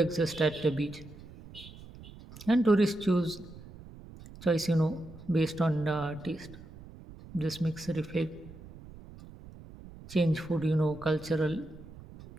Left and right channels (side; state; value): right; noise; rumble, 17 dB below the sound